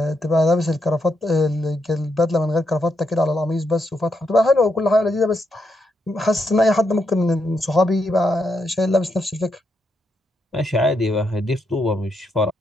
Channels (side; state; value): both; normal; correlation 0.80